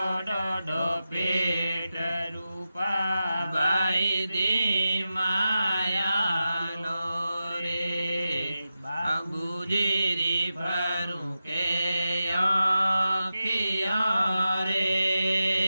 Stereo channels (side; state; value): both; inverted; correlation -0.91